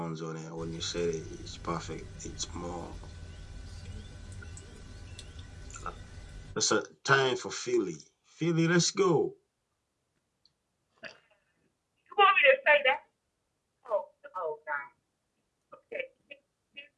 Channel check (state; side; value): identical; both; correlation 1.00